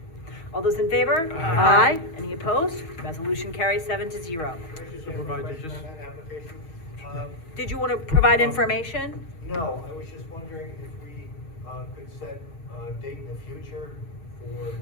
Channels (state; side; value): late; right; 6.3 ms